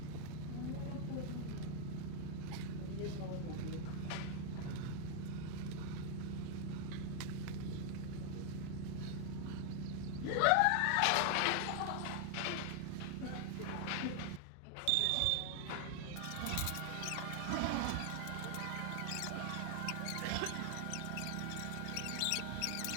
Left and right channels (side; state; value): both; different; correlation 0.00